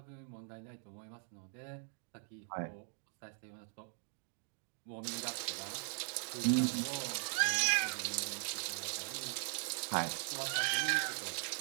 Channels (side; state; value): left; silent; 51 dB below the other